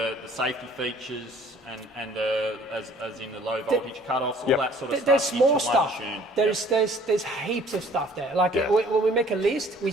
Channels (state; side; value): normal; both; correlation 0.55